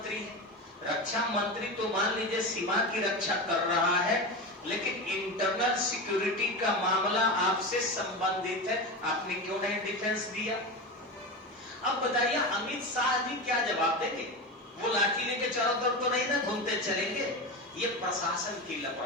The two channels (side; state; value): both; normal; correlation 0.22